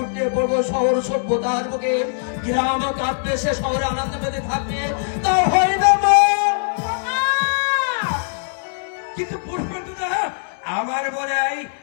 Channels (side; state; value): right; silent; digital silence